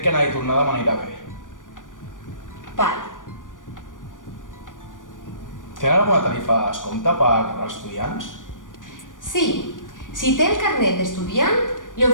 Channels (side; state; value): right; late; 0.88 ms